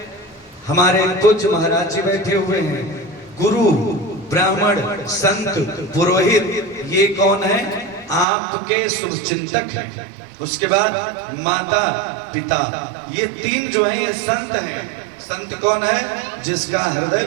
हमारे पूज्य महाराज जी बैठे हुए हैं। गुरु, ब्राह्मण, संत, पुरोहित, ये कौन है? आपके शुभचिंतक हैं। उसके बाद माता, पिता, ये तीन जो है ये संत हैं। संत कौन है? जिसका हृदय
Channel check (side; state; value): left; drops out; at 8.2 s